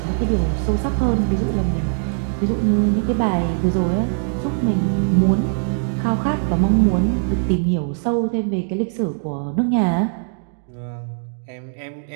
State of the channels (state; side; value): silent; left; digital silence